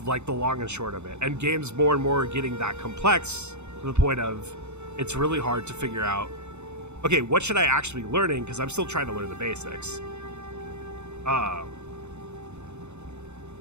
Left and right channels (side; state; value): left; late; 0.82 ms